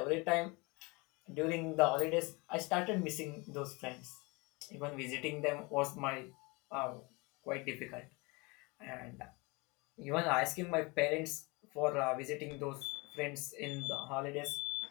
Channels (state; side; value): quieter; right; 26.8 dB